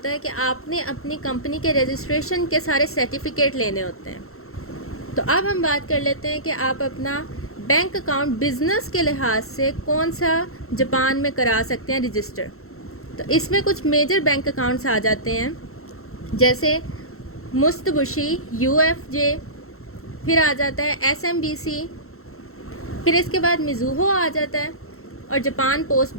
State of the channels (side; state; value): right; late; 0.63 ms